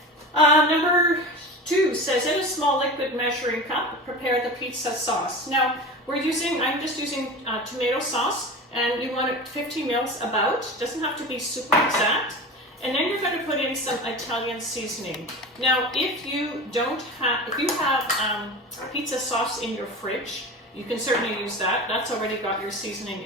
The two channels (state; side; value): normal; both; correlation 0.30